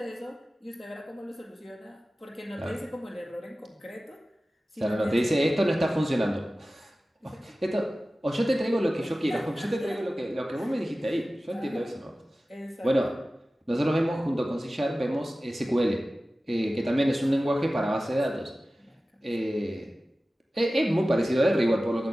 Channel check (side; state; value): both; normal; correlation 0.96